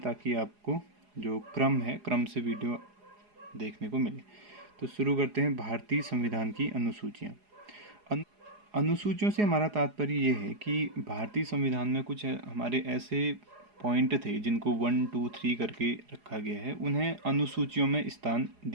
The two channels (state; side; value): late; left; 4.8 ms